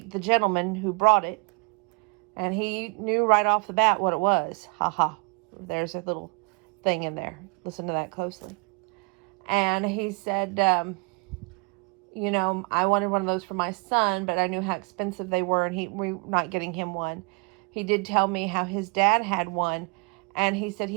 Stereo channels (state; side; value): quieter; left; 32.0 dB